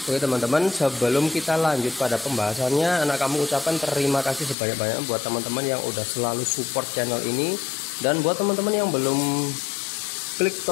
Oke teman-teman, sebelum kita lanjut pada pembahasannya, Anak Kampung ucapkan terima kasih sebanyak-banyak buat teman-teman yang udah selalu support channel ini. Dan buat teman-teman yang belum klik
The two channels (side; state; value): right; drops out; at 4.5 s